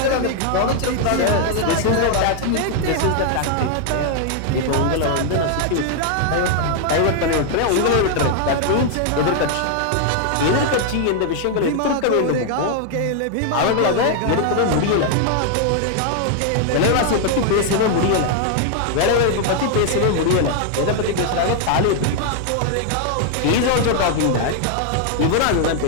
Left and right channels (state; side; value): different; both; correlation 0.00